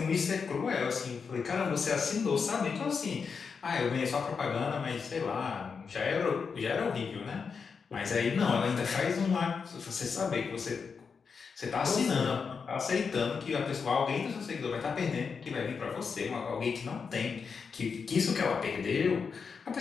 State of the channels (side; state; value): right; quieter; 5.7 dB